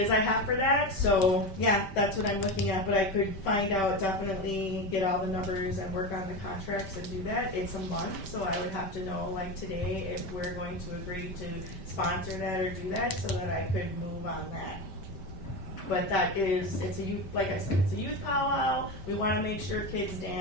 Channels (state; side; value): late; right; 5.1 ms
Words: I have for that. So yeah, that's what I'm looking at, but I could find out, definitely get all the numbers and work on the contracts and do that. It's a month, so I would have to know like today if we're going to agree to sponsor that or do that, so that I could move on that. But it's a youth, like I said, it's a youth powwow. We want to make sure kids